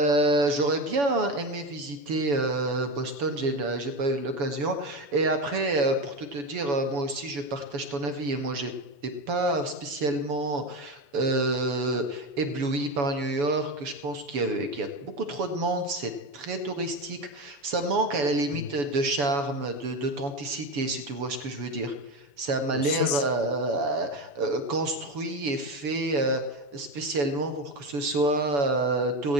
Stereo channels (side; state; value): left; late; 7.0 ms